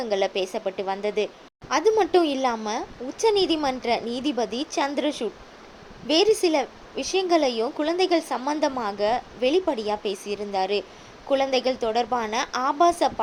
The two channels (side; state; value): both; identical; correlation 1.00